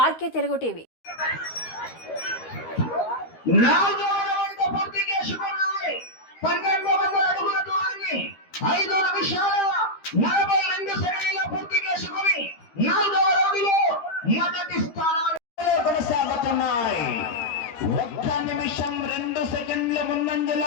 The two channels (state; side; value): late; right; 13 ms